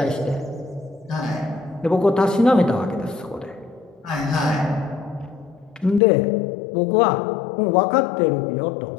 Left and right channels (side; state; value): right; drops out; at 6.0 s